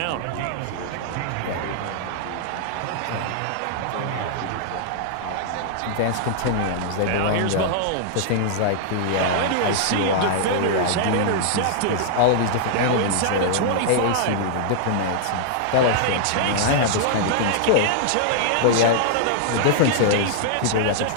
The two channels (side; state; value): both; different; correlation -0.01